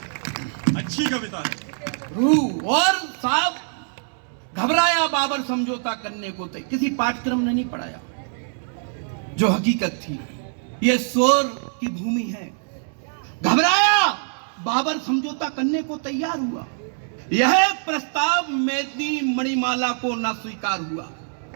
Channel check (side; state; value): left; silent; 63 dB below the other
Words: अच्छी कविता है। रूह और साहब घबराया बाबर समझौता करने को थे, किसी पाठ्यक्रम ने नहीं पढ़ाया, जो हकीकत थी। ये शोर की भूमि है। घबराया बाबर समझौता करने को तैयार हुआ। यह प्रस्ताव मेदनी मणिमाला को न स्वीकार हुआ,